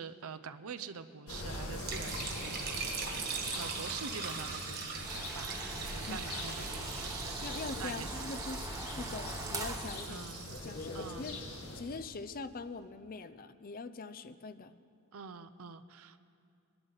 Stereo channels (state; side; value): normal; both; correlation 0.19